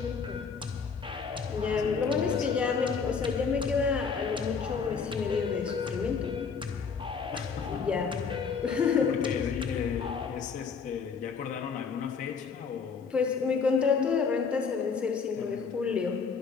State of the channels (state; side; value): quieter; right; 5.6 dB